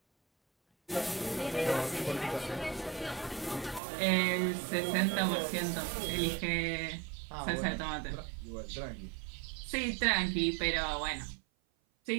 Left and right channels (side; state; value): left; drops out; at 3.8 s